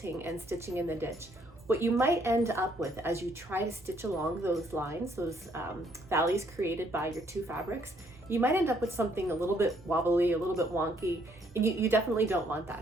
and stitching in the ditch, what you might end up with as you try to stitch along those lines, those valleys created by your two fabrics, you might end up with something a little bit wobbly, a little bit wonky, and you definitely don't want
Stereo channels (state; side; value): normal; both; correlation 0.68